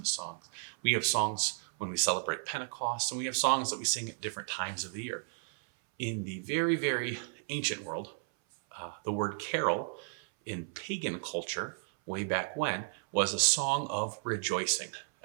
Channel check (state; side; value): silent; left; 55 dB below the other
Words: songs, we have songs when we celebrate Pentecost, and we have songs that we sing at different times of the year. In the very, very ancient world, the word carol in pagan culture, way back when, was a song of rejoicing.